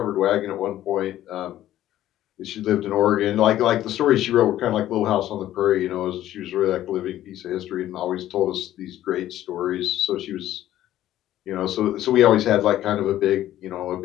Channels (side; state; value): right; quieter; 13.2 dB